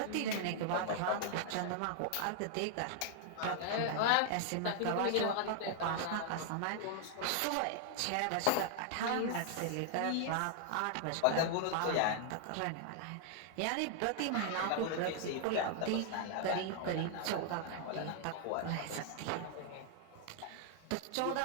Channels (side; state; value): both; different; correlation 0.00